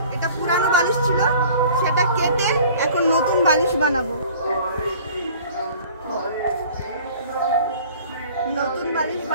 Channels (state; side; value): inverted; both; correlation -0.48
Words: এটা পুরানো বালিশ ছিল সেটা কেটে এখন নতুন বালিশ বানাবো। নতুন বালিশ